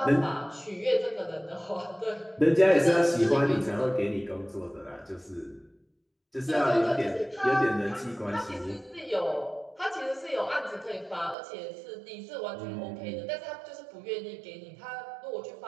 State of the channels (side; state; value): left; drops out; at 11.4 s